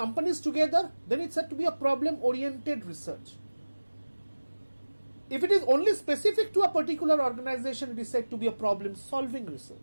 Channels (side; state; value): both; inverted; correlation -1.00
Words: together, then it's said to be a problem-oriented research. If it is only specific to a particular organization, it is said to be a problem-solving